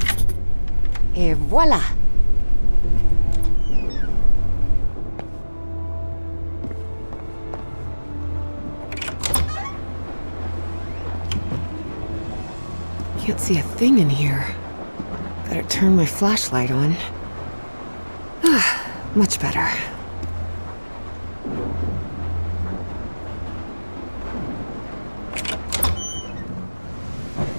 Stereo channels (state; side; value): inverted; both; correlation -1.00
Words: Et voila! Can't see a thing in here. Better turn my flashlight on. Ah, much better.